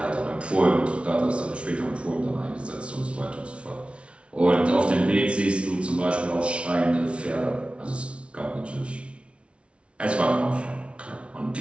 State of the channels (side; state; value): left; late; 0.060 ms